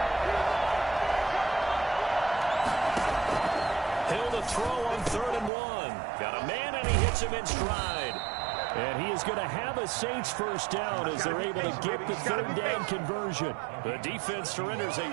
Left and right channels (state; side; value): drops out; left; at 5.5 s